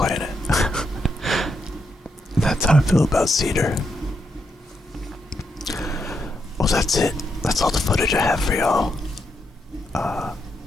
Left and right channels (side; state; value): both; normal; correlation 0.81